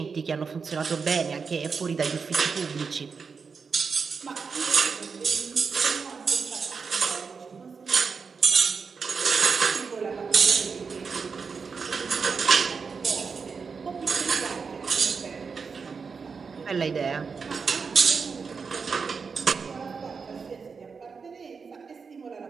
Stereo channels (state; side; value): quieter; left; 5.4 dB